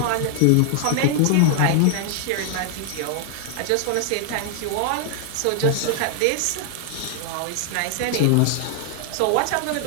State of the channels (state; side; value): different; both; correlation 0.00